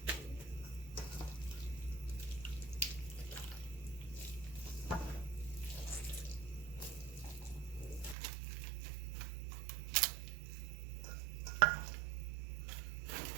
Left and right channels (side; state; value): left; drops out; at 8.2 s